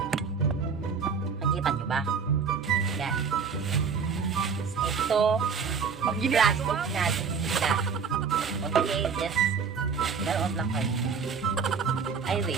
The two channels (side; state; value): left; quieter; 5.8 dB